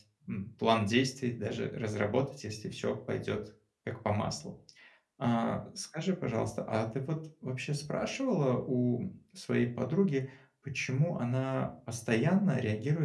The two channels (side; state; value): both; identical; correlation 1.00